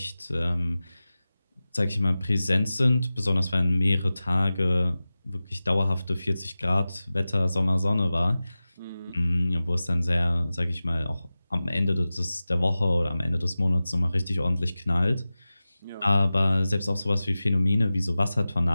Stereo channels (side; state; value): both; inverted; correlation -0.96